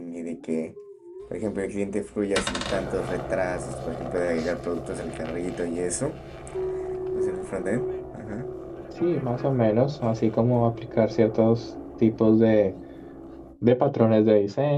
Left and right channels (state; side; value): identical; both; correlation 1.00